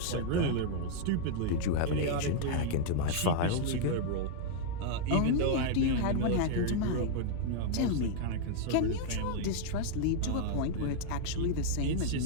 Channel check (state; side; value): different; both; correlation -0.01